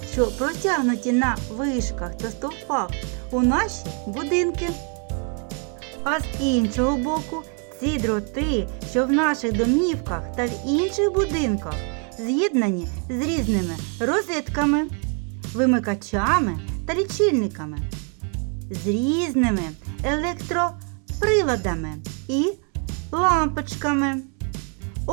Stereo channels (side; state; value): left; quieter; 39.7 dB